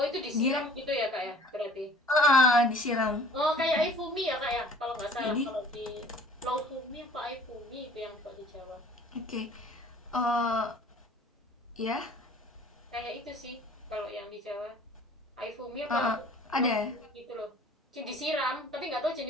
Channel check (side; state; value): both; normal; correlation 0.50